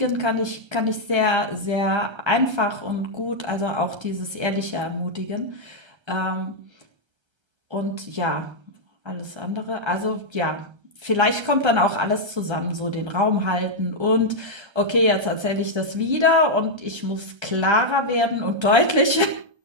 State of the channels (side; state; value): left; late; 1.3 ms